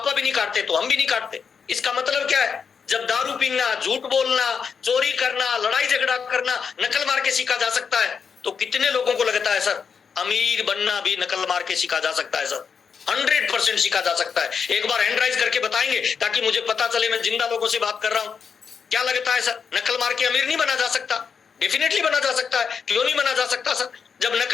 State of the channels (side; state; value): right; quieter; 6.3 dB